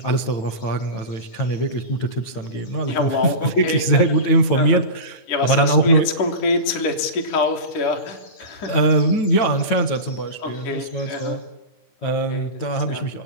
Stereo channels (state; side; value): late; right; 9.2 ms